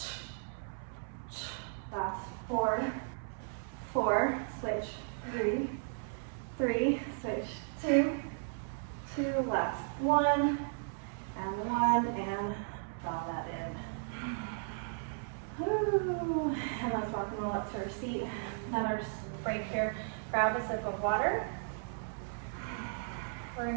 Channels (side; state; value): left; silent; 54 dB below the other